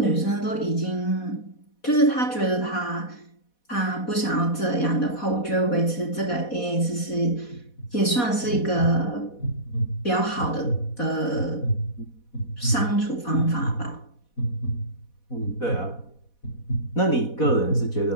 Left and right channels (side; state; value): right; late; 4.1 ms